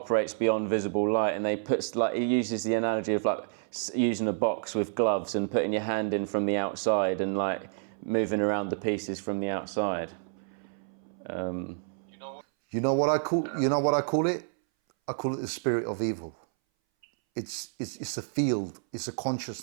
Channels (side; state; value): left; silent; 58 dB below the other